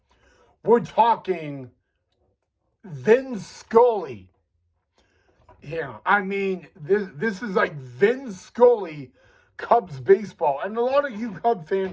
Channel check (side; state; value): both; identical; correlation 1.00